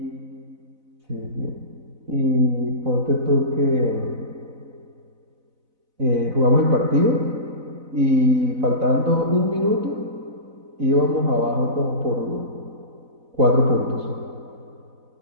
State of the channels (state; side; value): late; left; 4.0 ms